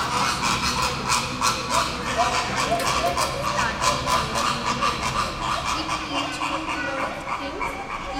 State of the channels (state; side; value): identical; both; correlation 1.00